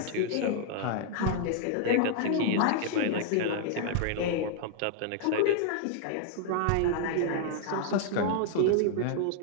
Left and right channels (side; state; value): both; different; correlation -0.01